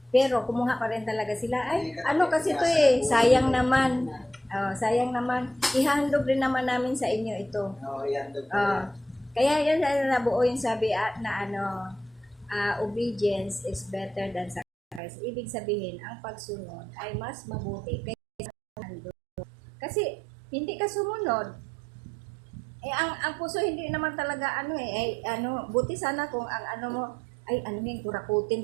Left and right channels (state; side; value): drops out; left; at 15.0 s